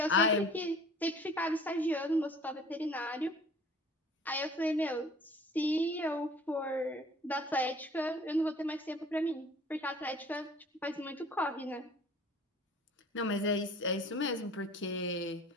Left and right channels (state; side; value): normal; both; correlation 0.49